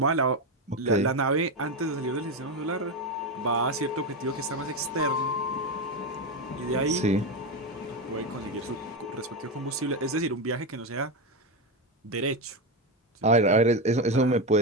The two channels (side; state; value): both; normal; correlation 0.12